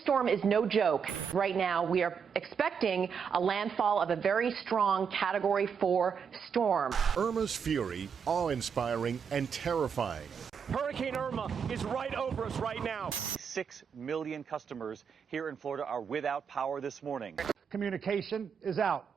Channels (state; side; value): quieter; left; 6.7 dB